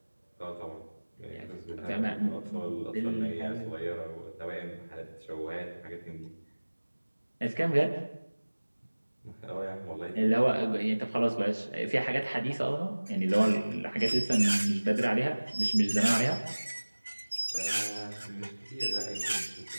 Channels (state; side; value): inverted; both; correlation -1.00